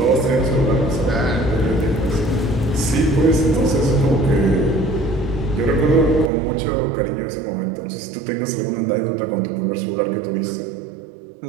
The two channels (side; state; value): left; drops out; at 6.3 s